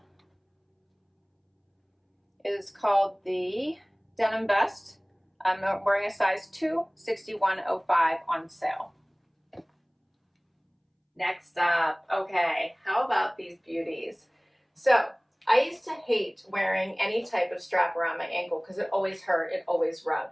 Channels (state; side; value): identical; both; correlation 1.00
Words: is called the denim vest. I'm wearing a size 2, 61.05 on sale. Next up, okay, how about these beauties? So I used to hate wearing any type of strap around my ankle because it always hurt, it always